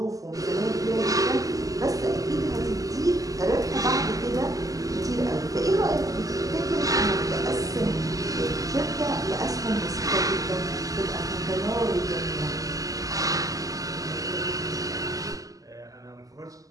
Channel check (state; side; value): late; left; 0.17 ms